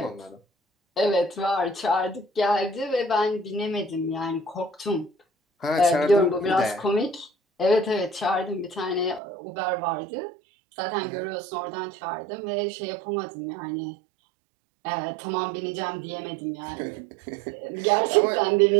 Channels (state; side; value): drops out; left; at 9.2 s